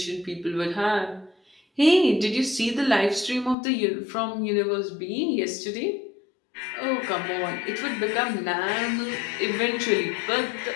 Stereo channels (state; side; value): drops out; right; at 3.6 s